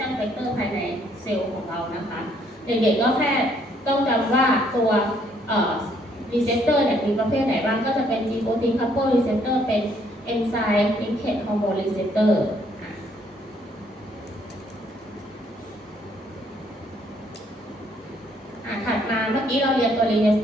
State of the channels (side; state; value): both; normal; correlation 0.67